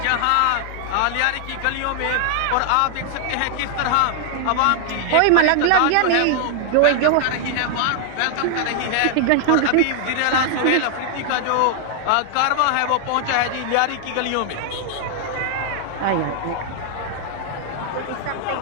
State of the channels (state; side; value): different; both; correlation 0.00